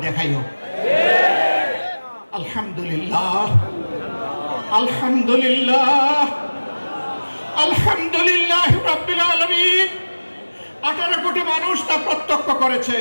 দেখাইও। আলহামদুলিল্লাহ, আলহামদুলিল্লাহ, আলহামদুলিল্লাহ রাব্বিল আলামিন। 18 কোটি মানুষ তা প্রত্যক্ষ করেছে।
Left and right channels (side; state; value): both; inverted; correlation -1.00